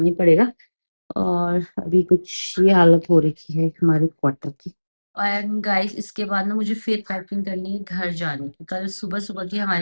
ही पड़ेगा। और अभी कुछ ये हालत हो रखी है हमारे क्वार्टर की। एंड गाइस इसके बाद ना मुझे फिर पैकिंग करनी है घर जाने की, कल सुबह सुबह की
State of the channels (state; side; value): inverted; both; correlation -1.00